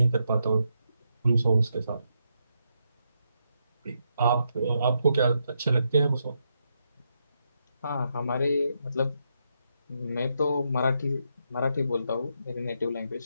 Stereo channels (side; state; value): both; inverted; correlation -0.81